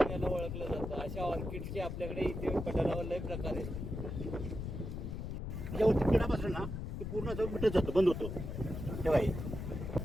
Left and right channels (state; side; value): noise; left; rumble, 5 dB below the sound